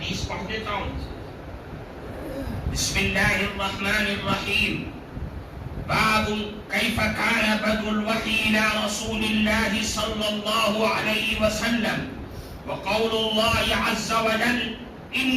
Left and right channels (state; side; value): identical; both; correlation 1.00